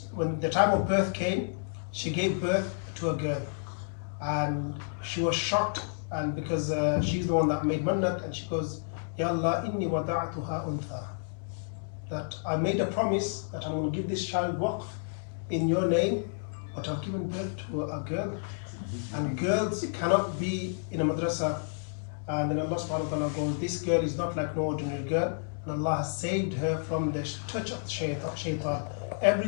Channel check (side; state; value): right; silent; digital silence